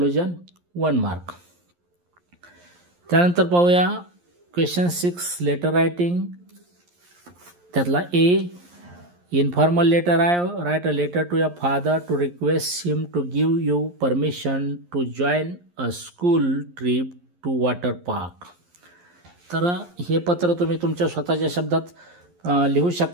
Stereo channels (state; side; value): late; left; 11 ms